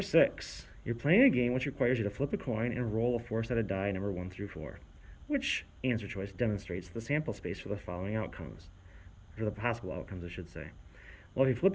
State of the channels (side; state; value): both; identical; correlation 1.00